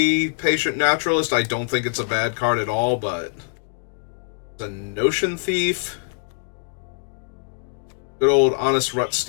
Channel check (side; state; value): right; silent; digital silence